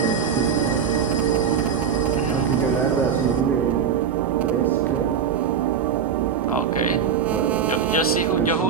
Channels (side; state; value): left; quieter; 7.2 dB